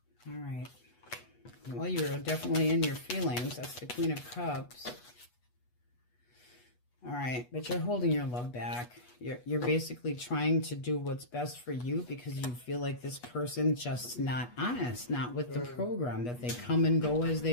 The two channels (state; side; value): late; right; 8.2 ms